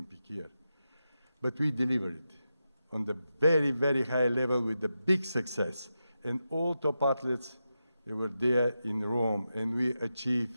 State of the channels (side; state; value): both; inverted; correlation -0.89